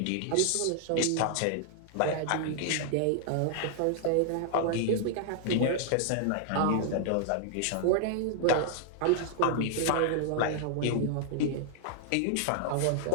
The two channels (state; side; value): different; both; correlation 0.00